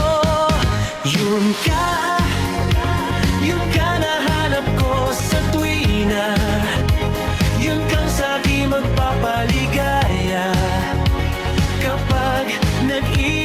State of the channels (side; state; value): both; identical; correlation 1.00